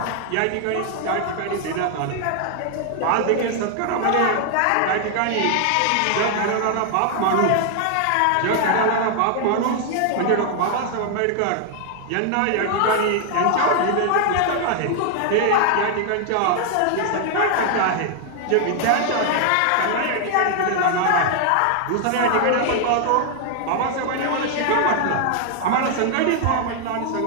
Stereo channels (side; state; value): both; different; correlation 0.00